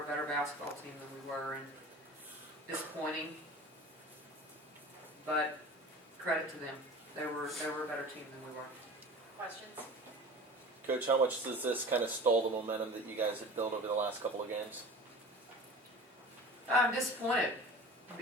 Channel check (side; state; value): both; normal; correlation 0.39